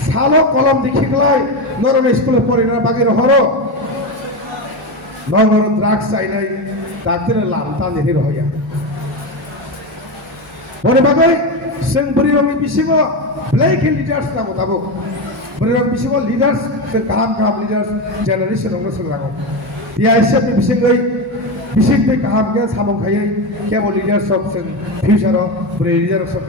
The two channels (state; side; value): normal; both; correlation 0.15